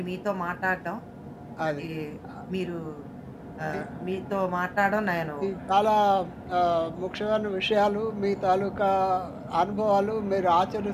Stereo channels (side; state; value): both; identical; correlation 1.00